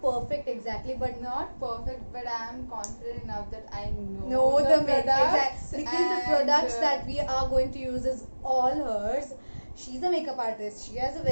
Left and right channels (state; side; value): inverted; both; correlation -1.00